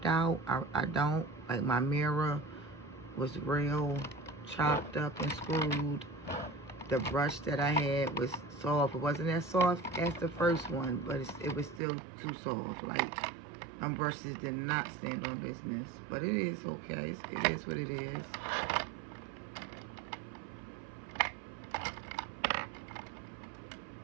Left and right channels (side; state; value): left; drops out; at 11.8 s